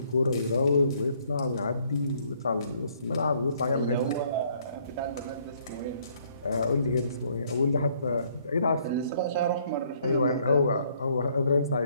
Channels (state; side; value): inverted; both; correlation -0.65